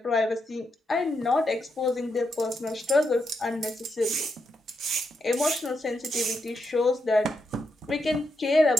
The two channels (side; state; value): both; normal; correlation 0.82